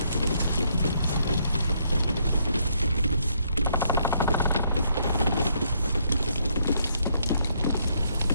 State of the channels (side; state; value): both; inverted; correlation -0.72